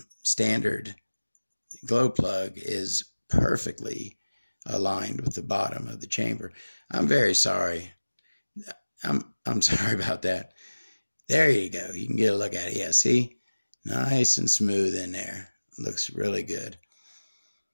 standard glow plug is perfectly aligned with the bottom of the chamber. I'm very sorry. I'm sorry about that. There you go. You can get a look at it. Yeah, see? Nice and smooth in there. Looks really good.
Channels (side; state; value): both; inverted; correlation -1.00